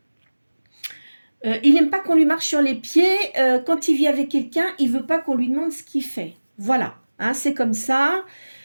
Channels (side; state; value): both; inverted; correlation -1.00